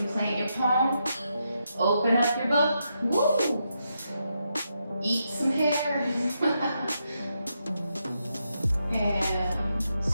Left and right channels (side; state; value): both; inverted; correlation -0.83